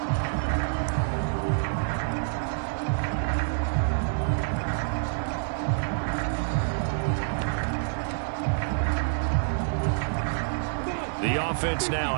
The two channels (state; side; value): silent; left; digital silence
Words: The offense now